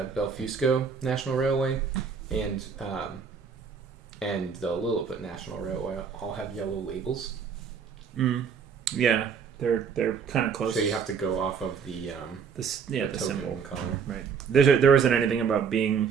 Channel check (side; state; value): left; quieter; 6.4 dB